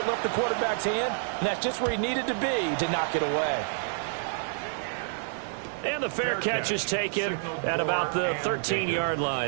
left the quarterback's hand, and that's just where he needed to be to knock it away. And the fair catch is taken at about the 13-yard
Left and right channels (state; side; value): silent; left; digital silence